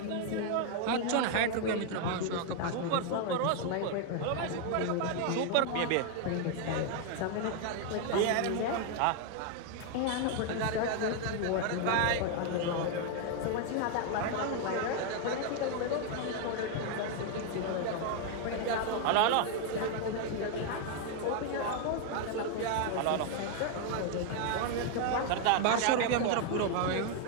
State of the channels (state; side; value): different; both; correlation 0.00